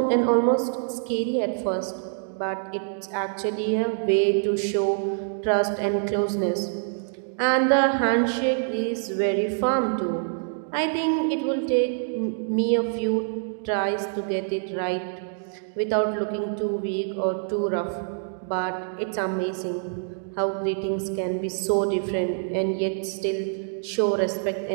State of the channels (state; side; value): silent; left; digital silence